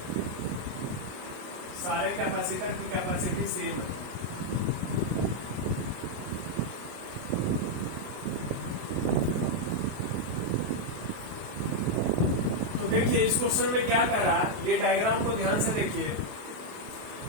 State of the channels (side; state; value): left; late; 28 ms